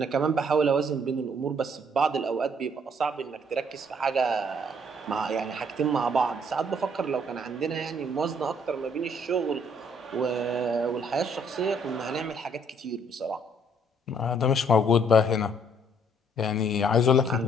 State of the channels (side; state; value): both; normal; correlation 0.64